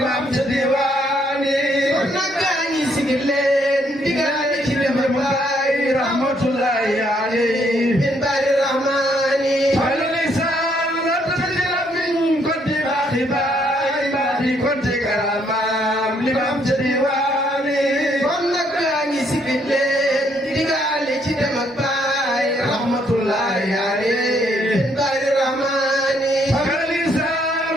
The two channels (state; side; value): normal; both; correlation 0.70